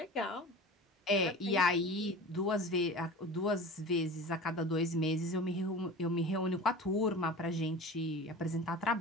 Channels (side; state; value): both; normal; correlation 0.36